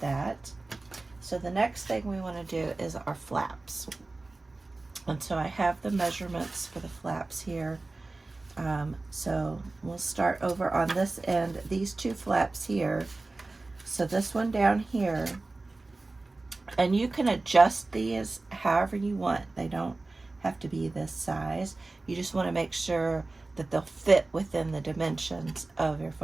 that. So the next thing we want to do is our flaps. And so I have the measurements for the flaps here. So we'll start over on this end, these 2 flaps here. So this one down here, and you can adjust these however you want. They don't have to be this size. You just want to make sure that they'll fit within the dimensions of your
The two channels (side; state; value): left; quieter; 3.2 dB